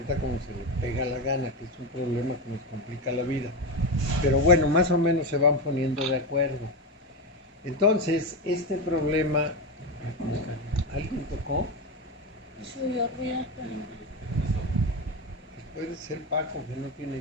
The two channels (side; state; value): both; normal; correlation 0.15